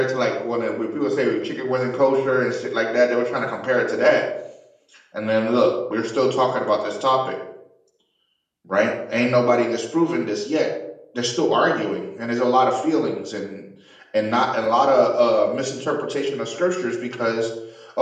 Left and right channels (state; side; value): identical; both; correlation 1.00